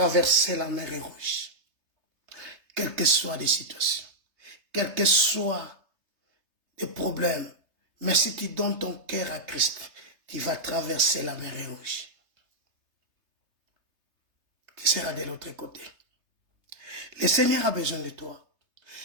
la mer Rouge. Quelles que soient les situations, quels que soient les problèmes, mais si tu donnes ton cœur à Christ, tu vas traverser la mer Rouge. Tu seras de l'autre côté. Le Seigneur a besoin de toi.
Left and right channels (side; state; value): left; late; 3.3 ms